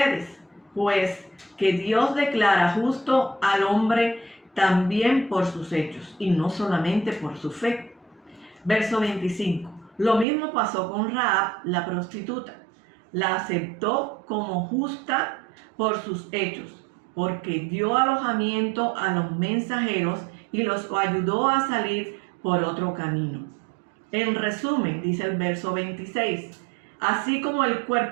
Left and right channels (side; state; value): left; drops out; at 10.2 s